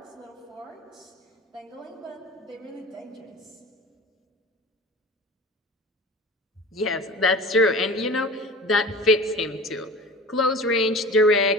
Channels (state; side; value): normal; both; correlation 0.37